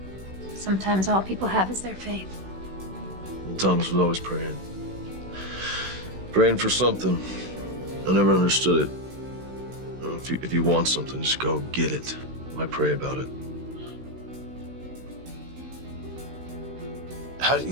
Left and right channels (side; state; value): left; late; 16 ms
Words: Sometimes all people have is their faith. And Thomas was always praying. Praying for something. I never understood it. You know, if you want something, just go get it. Why pray about it? How do you